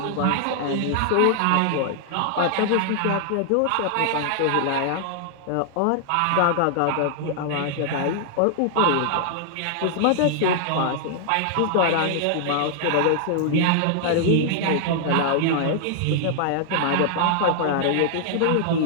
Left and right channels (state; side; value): different; both; correlation 0.00